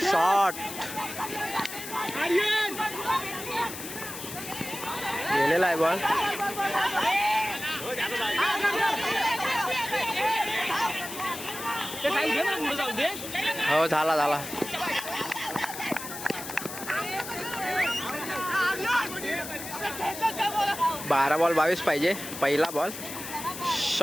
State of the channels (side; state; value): left; noise; hiss, 9 dB below the sound